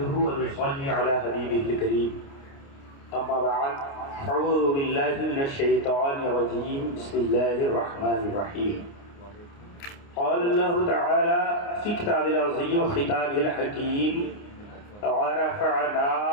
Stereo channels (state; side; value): late; right; 29 ms